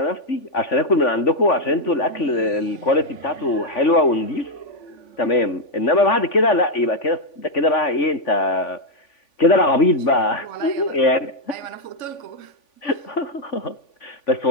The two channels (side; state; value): right; late; 3.5 ms